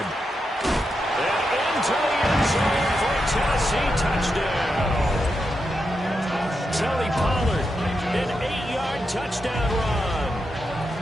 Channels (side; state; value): both; normal; correlation 0.86